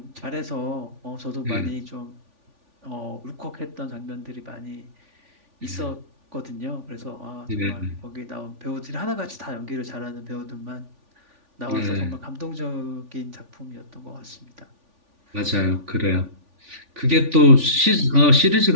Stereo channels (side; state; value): left; late; 3.5 ms